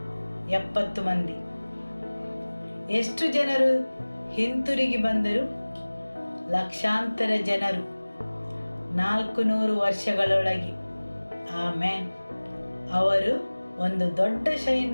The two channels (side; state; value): both; inverted; correlation -1.00